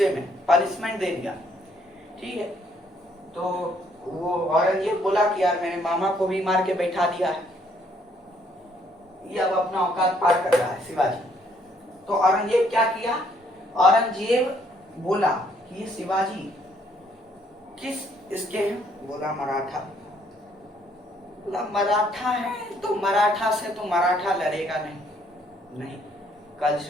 में पनिशमेंट दे दिया। ठीक है, तो वो औरंगजेब बोला कि यार मेरे मामा को भी मार के बैठा दिया है, ये अब अपना औकात पार कर रहा है शिवाजी। तो औरंगजेब क्या किया, औरंगजेब बोला कि ये शिवाजी किस इसके हैं? बोला मराठा। बोला मराठा है तो मराठा से तो मराठा लड़ेगा नहीं,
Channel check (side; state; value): both; normal; correlation 0.67